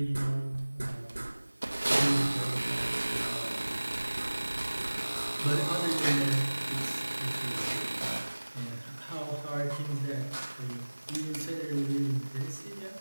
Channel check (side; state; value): both; inverted; correlation -1.00